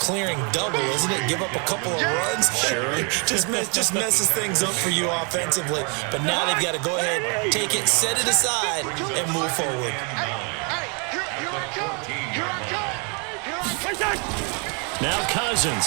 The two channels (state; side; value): quieter; left; 35.7 dB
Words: double, isn't it? Give up a couple of runs. Sure. just messes things up for you offensively. But now they've got to go ahead, take it, set it aside, and move forward. Now